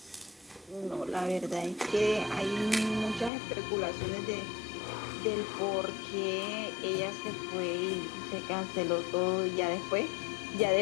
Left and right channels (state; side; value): drops out; right; at 3.3 s